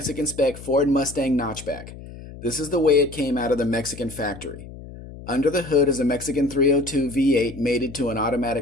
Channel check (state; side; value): noise; left; hum, 15 dB below the sound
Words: Spec Ford Mustang Notchback. This is the way it came out of the Mexican factory. Under the hood is a Mexican 302 V8 mated to an